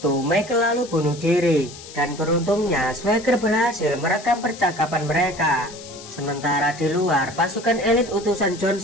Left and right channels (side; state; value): left; noise; hiss, 16 dB below the sound